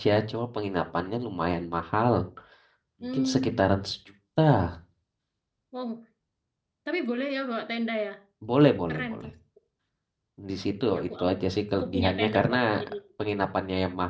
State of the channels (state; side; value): identical; both; correlation 1.00